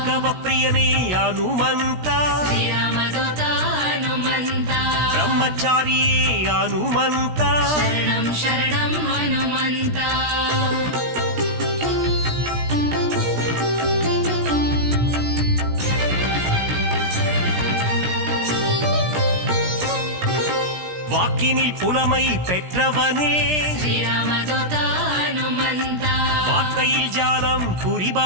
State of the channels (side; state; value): left; late; 17 ms